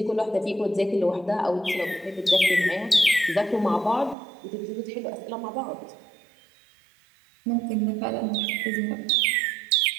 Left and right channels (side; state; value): left; drops out; at 4.2 s